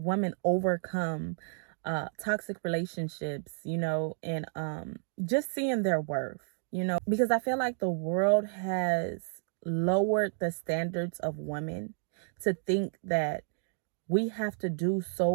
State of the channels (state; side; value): silent; left; digital silence